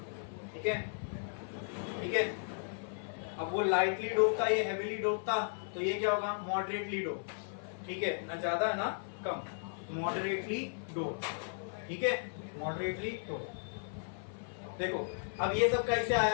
ठीक है, ठीक है। अब वो लाइटली डोप था, ये हैवीली डोप था, तो ये क्या होगा? मॉडरेटली डोप, ठीक है, ना ज्यादा ना कम, मॉडरेटली डोप, ठीक है, मॉडरेटली डोप। देखो अब ये सब कैसे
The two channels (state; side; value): silent; right; 54 dB below the other